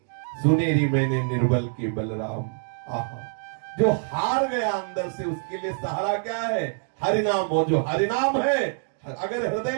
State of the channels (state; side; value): silent; left; digital silence